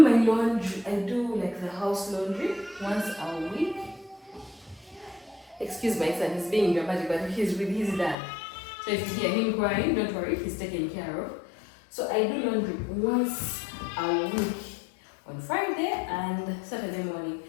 laundry, I do like the house laundry once a week. Excuse my son, he's being dramatic, but he's with his dad. So if you hear him crying, don't worry, he's taken care of. So I do laundry once a week on Friday and Saturday morning.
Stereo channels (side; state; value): right; drops out; at 8.2 s